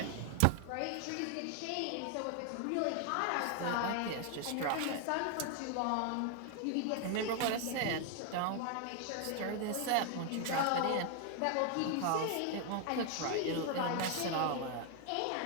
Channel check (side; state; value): both; different; correlation 0.00